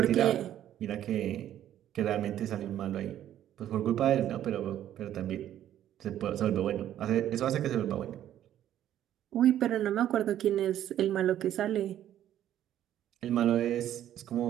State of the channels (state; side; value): quieter; left; 11.5 dB